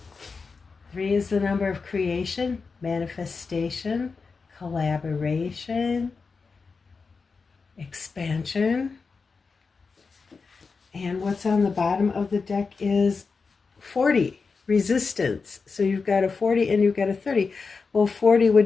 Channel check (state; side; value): quieter; right; 4.7 dB